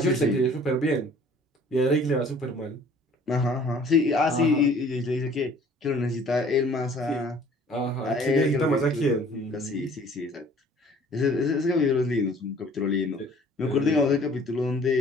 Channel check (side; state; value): both; normal; correlation 0.53